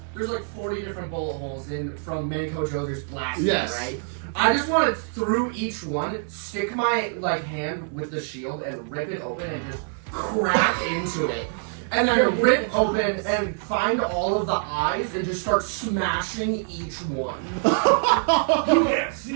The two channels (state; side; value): silent; left; 58 dB below the other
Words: there's like 40 different bullet holes in from Manco Joe just blasting, Yes. right? I just want to through each one, stick my like hand with the shield and rip it open and just crack into it. And then rip open and find all of the eyes and just start smashing each one. You can't